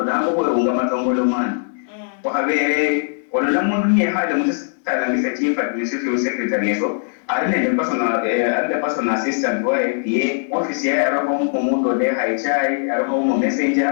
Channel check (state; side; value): silent; right; digital silence